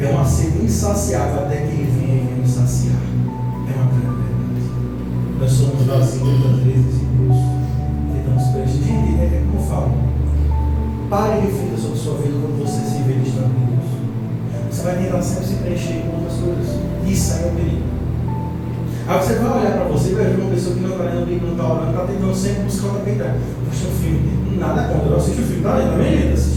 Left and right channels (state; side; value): identical; both; correlation 1.00